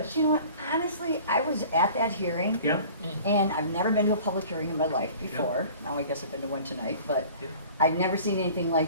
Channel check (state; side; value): inverted; both; correlation -0.46